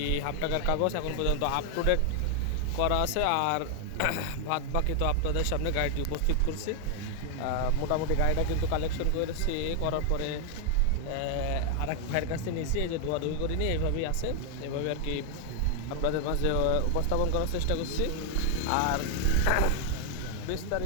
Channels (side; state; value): both; different; correlation 0.00